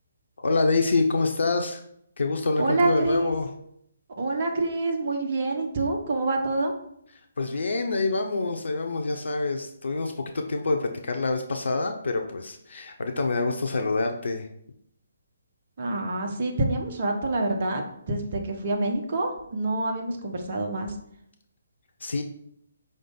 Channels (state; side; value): inverted; both; correlation -0.81